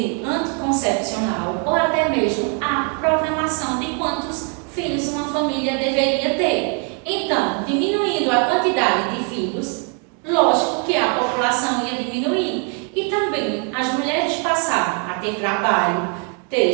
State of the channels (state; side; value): quieter; left; 39.9 dB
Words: anticoncepcional ou até mesmo a programação de quantos filhos uma família deveria ter. Então, diminuindo a quantidade de filhos, lógico que a população ia diminuir e também as mulheres passaram a ter trabalho, ter